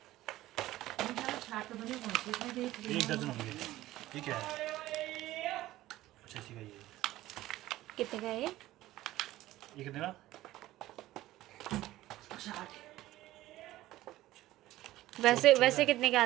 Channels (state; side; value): quieter; left; 15.9 dB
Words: 60 बने कौन से 1 दर्जन होंगे। ठीक है। अच्छा इसी का ये कितने का है ये? कितने का? 60। वैसे कितने के